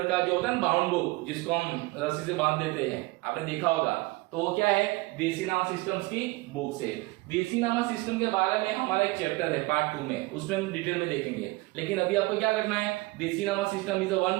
का जो होता है ना बाउंड बुक, जिसको हम रस्सी से बांध देते हैं, आपने देखा होगा तो वो क्या है, देसीनामा सिस्टम्स की बुक से। देसीनामा सिस्टम के बारे में हमारा एक चैप्टर है पार्ट 2 में, उसमें हम डिटेल में देखेंगे। लेकिन अभी आपको क्या करना है, देसीनामा system is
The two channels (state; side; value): quieter; left; 22.6 dB